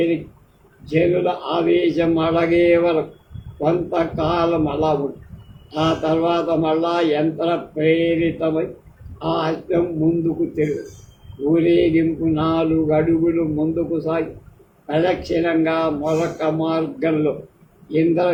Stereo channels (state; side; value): identical; both; correlation 1.00